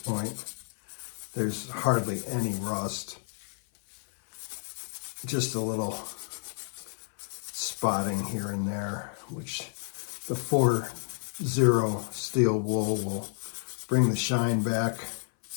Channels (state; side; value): silent; right; 56 dB below the other